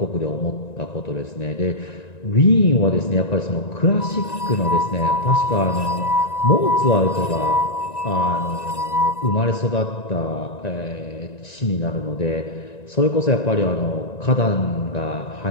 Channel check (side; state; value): right; late; 1.9 ms